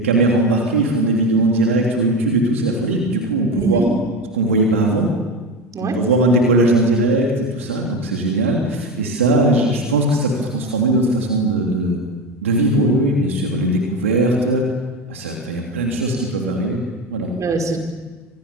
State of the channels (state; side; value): normal; both; correlation 0.20